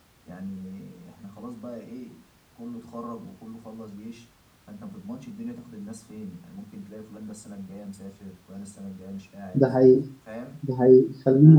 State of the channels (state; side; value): identical; both; correlation 1.00